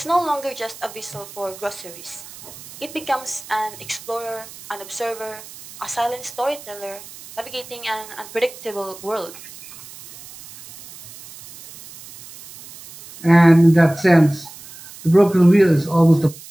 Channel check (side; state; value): right; noise; hiss, 17 dB below the sound